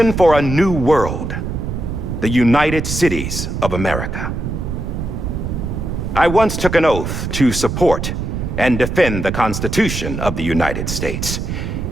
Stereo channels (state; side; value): noise; right; rumble, 4 dB below the sound